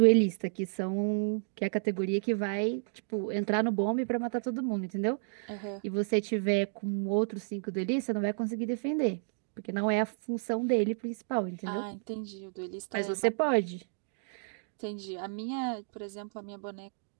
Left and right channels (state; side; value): silent; left; digital silence